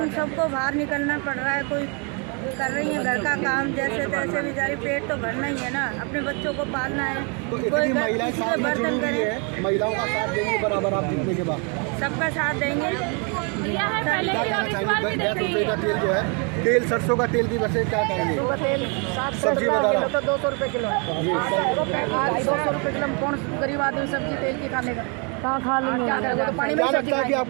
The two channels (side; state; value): left; quieter; 35.3 dB